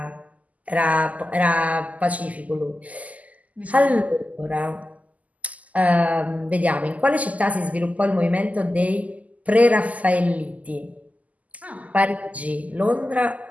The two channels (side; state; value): left; late; 0.074 ms